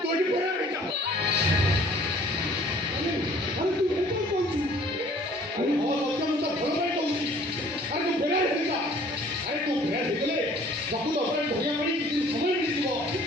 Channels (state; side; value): normal; both; correlation 0.55